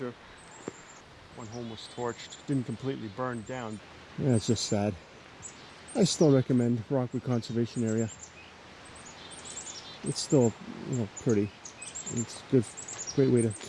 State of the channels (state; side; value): identical; both; correlation 1.00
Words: One home was torched. Didn't completely burn down. Yeah, it's just sad. I still recommend Rockwood Conservation Area. It's still, you know, pretty. It's a great way to